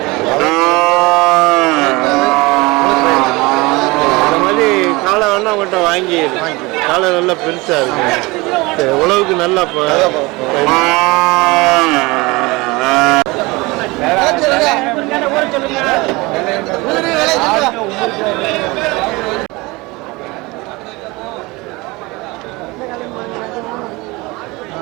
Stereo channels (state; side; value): quieter; left; 23.4 dB